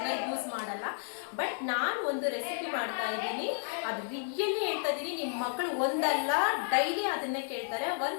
ಯೂಸ್ ಮಾಡಲ್ಲ. ಬಟ್ ನಾನು ಒಂದು ರೆಸಿಪಿ ಮಾಡ್ತಾ ಇದ್ದೀನಿ, ಅದು ರಿಯಲಿ ಹೇಳ್ತಾ ಇದ್ದೀನಿ, ನಿಮ್ಮ ಮಕ್ಕಳು ಒಂದಲ್ಲ ಡೈಲಿ ಅದನ್ನೇ ಕೇಳ್ತಾರೆ.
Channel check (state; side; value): silent; right; digital silence